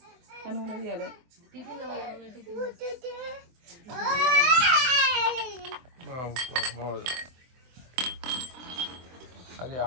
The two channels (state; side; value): late; left; 24 ms